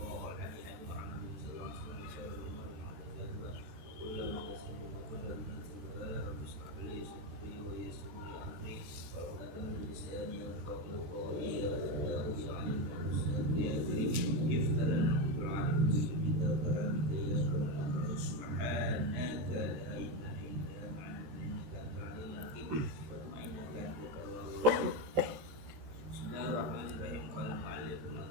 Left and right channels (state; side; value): late; left; 14 ms